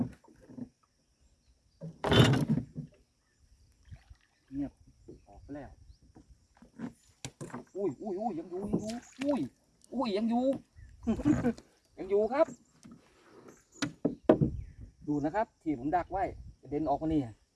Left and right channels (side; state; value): both; identical; correlation 1.00